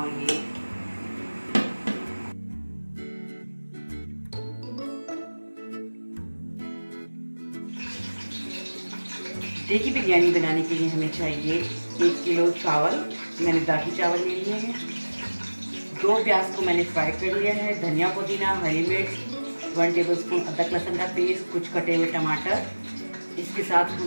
ये देखिए, बिरयानी बनाने के लिए हमें चाहिए 1 किलो चावल। मैंने दागी चावल ले लिए हैं। 2 प्याज को मैंने फ्राई कर लिया है। धनिया, पुदीना, हरी मिर्च, 1 टेबलस्पून अदरक लहसुन का पेस्ट, कुछ कटे हुए टमाटर। इसके साथ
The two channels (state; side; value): inverted; both; correlation -1.00